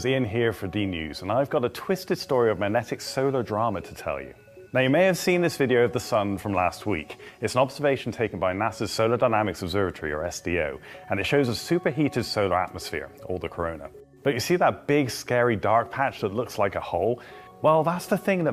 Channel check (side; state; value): both; identical; correlation 1.00